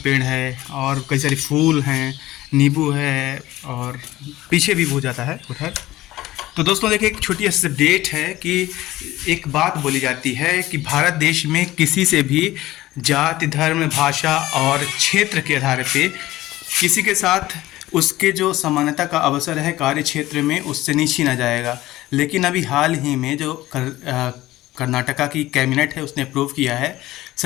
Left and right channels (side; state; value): right; quieter; 16.6 dB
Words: है और कई सारे फूल हैं, नींबू है और पीछे भी हो जाता है उधर। तो दोस्तों देखिए, एक छोटी सी अपडेट है कि एक बात बोली जाती है कि भारत देश में किसी से भी जाति, धर्म, भाषा और क्षेत्र के आधार पे किसी के साथ उसके जो समानता का अवसर है कार्य क्षेत्र में, उससे नहीं छीना जाएगा। लेकिन अभी हाल ही में जो कर्नाटका की कैबिनेट है उसने अप्रूव किया है,